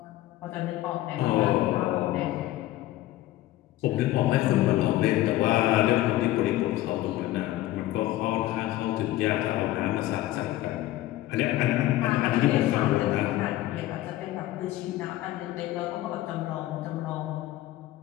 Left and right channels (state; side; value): quieter; right; 15.5 dB